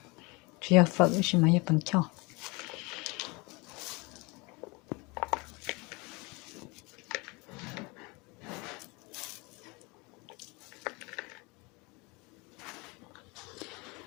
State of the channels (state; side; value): quieter; right; 27.0 dB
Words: phở chỉ mà bằng cho